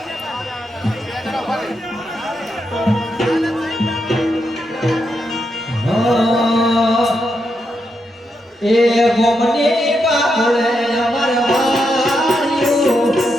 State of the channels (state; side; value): normal; both; correlation 0.83